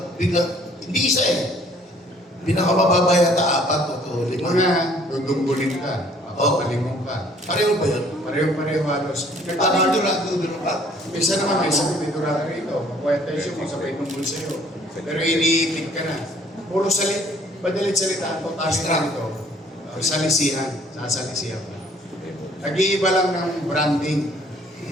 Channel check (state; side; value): normal; both; correlation 0.58